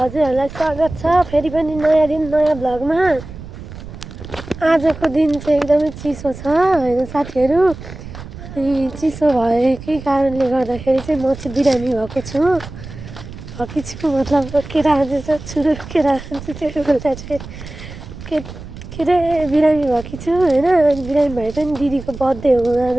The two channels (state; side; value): noise; right; rumble, 13 dB below the sound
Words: स्वागत छ फेरि पनि नयाँ दिन नयाँ भ्लगमा। आजको दिन चाहिँ एकदमै चिसो छ हैन साथीहरु। अनि चिसो भएकै कारणले गर्दाखेरि चाहिँ म चाहिँ बिरामी भएको छु। मतलब केरा चाहिँ छुरु केरा चाहिँ बेला चाहिँ के रे बिरामी भएकी छु हैन। बिरामी भए पनि दिदीको बर्थडे हो